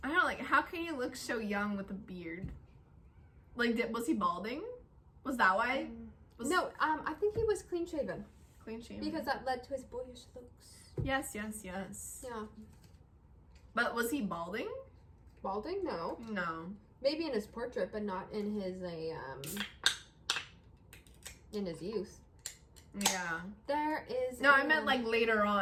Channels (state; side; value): identical; both; correlation 1.00